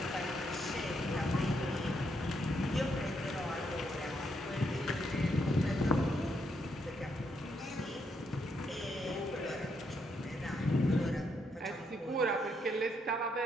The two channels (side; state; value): both; normal; correlation 0.77